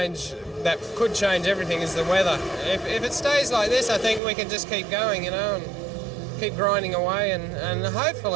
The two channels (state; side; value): drops out; left; at 4.2 s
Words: that could change everything, is the weather. If it stays like this, I think we can just keep going, you know, and keep grinding away, and